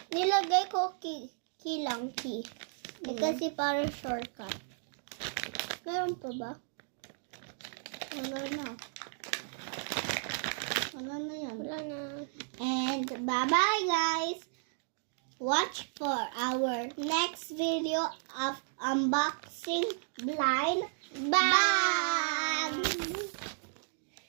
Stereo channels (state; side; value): silent; left; digital silence